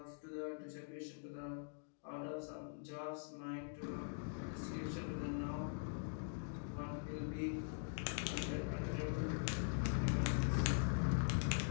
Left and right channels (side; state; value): right; silent; digital silence